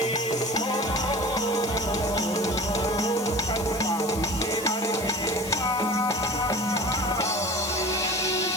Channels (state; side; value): noise; left; hiss, 12 dB below the sound